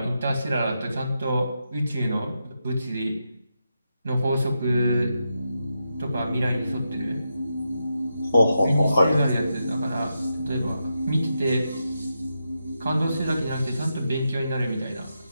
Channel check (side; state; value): both; inverted; correlation -0.86